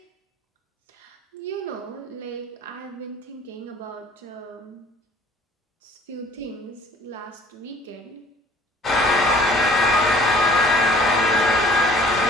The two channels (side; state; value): both; normal; correlation 0.52